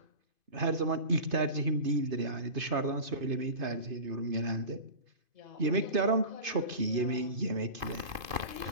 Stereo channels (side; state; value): left; late; 2.5 ms